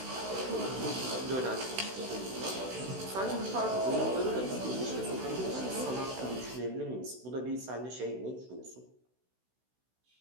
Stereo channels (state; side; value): late; left; 16 ms